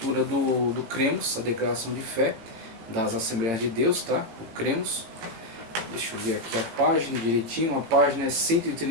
do Cremos, a declaração de fé das Assembleias de Deus, tá? O Cremos. Deixa eu ver aqui a página direitinho. A página é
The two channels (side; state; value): left; late; 18 ms